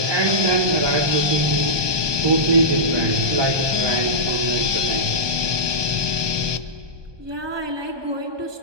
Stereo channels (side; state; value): left; late; 1.2 ms